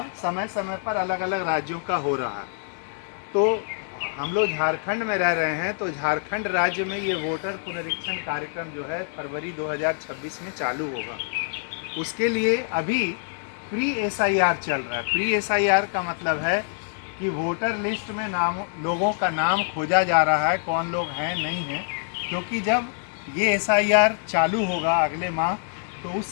समय समय पर अलग अलग राज्यों का हो रहा है। तो हम लोग झारखंड में रह रहे हैं, तो झारखंड राज्य में ये वोटर पुनरीक्षण कार्यक्रम जो है फरवरी 2026 में चालू होगा। उसके लिए अभी प्री SIR चल रहा है। प्री SIR का मतलब है कि वोटर लिस्ट में लोगों का नाम खोजा जा रहा है, कौन लोग हैं नहीं हैं, क्योंकि जब ये SIR चालू होगा अगले माह, तो उस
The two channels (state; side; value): silent; right; digital silence